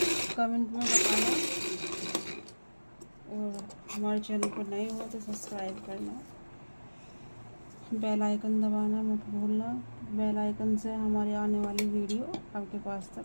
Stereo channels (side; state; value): both; inverted; correlation -1.00